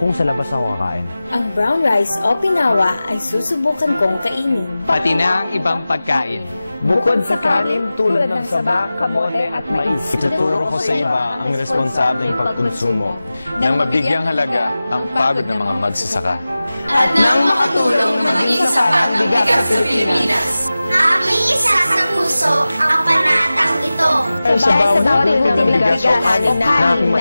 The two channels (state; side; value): inverted; both; correlation -0.96